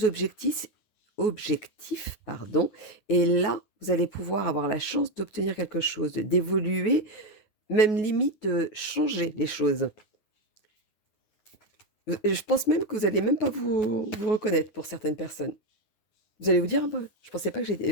objectifs, pardon, et là, vous allez pouvoir avoir la chance d'obtenir quelque chose, d'évoluer, même limite de changer les choses. Je pense même que vous allez même pas vous reconnaître pour certaines personnes. Vous allez vous dire: «Ah bah, je pensais pas que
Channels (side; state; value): right; late; 9.4 ms